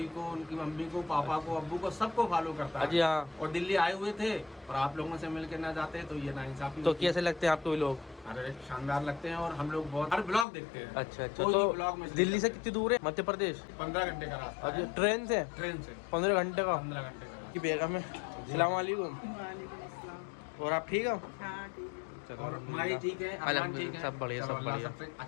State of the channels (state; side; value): drops out; right; at 10.5 s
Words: को, उनकी मम्मी को, पापा को, अब्बू को, सबको फॉलो करता अजी है। हाँ। और दिल्ली आए हुए थे और आप लोगों से मिलकर ना जाते तो ये नाइंसाफी तो होती। कैसे लगते हैं आपको ये लोग? अरे शानदार लगते हैं और हम लोग बहुत हर ब्लॉग देखते हैं। अच्छा अच्छा। कोई तो भी ब्लॉग में दिल्ली से कितनी दूर है मध्य प्रदेश? 15 घंटे का रास्ता अजी है। ट्रेन से? ट्रेन से 15 घंटे का। 15 घंटे का। की बेगम है। सलाम वालेकुम। और आप ठीक हो? चलो, और माही ठीक है, अरमान ठीक है, सब बढ़िया चलो, सब अल्लाह बढ़िया। सबसे